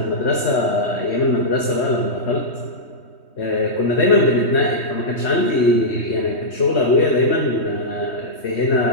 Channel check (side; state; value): right; late; 3.2 ms